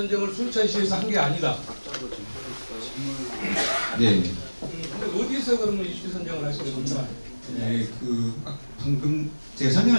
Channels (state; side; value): inverted; both; correlation -1.00